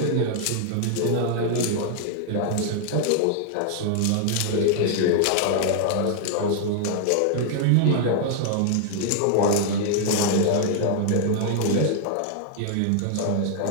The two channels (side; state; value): both; different; correlation 0.00